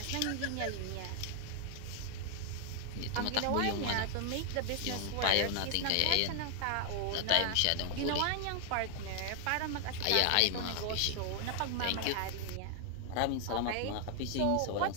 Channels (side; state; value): both; different; correlation 0.00